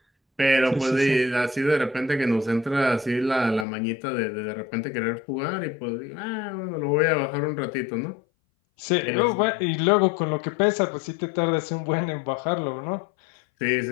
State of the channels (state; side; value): drops out; right; at 3.7 s